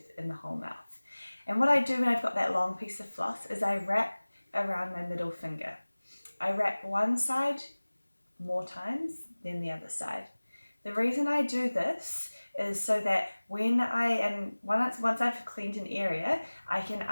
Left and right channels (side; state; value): both; inverted; correlation -1.00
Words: in the whole mouth. And what I do when I've got that long piece of floss is I wrap around my middle finger. I wrap one side more times than the other side. The reason I do this is so that once I've cleaned an area, I can